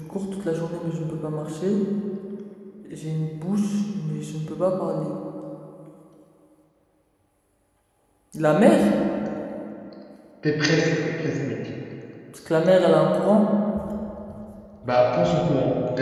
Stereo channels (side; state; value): both; identical; correlation 1.00